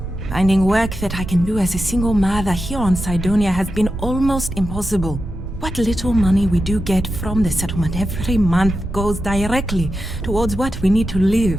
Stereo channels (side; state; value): right; noise; rumble, 9 dB below the sound